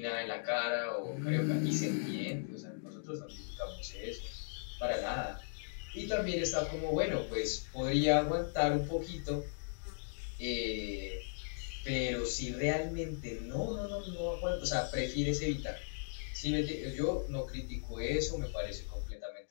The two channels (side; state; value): right; silent; digital silence